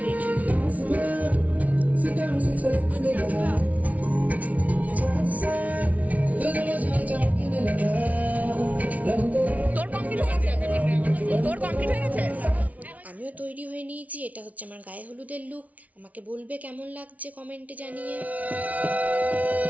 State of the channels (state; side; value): late; left; 0.070 ms